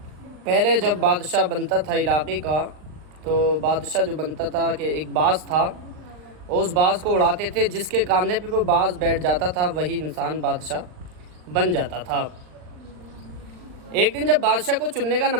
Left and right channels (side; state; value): left; late; 39 ms